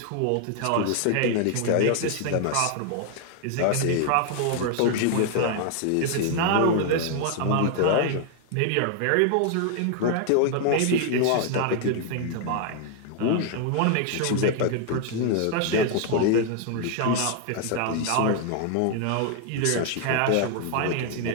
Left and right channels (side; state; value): both; different; correlation 0.00